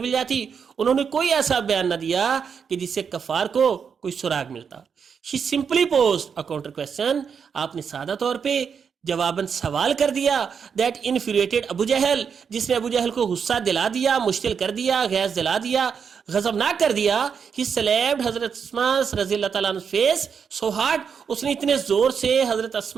جاتی. انہوں نے کوئی ایسا بیان نہ دیا کہ جس سے کفار کو کوئی سراغ ملتا. She simply posed a counter question، آپ نے سادہ طور پہ جواباً سوال کر دیا. that infuriated ابو جہل، جس نے ابو جہل کو غصہ دلا دیا، مشتعل کر دیا، غیظ دلا دیا، غضبناک کر دیا. He slapped حضرت اسما رضی اللہ تعالیٰ عنہ face so hard، اس نے اتنے زور سے حضرت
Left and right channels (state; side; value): quieter; left; 6.6 dB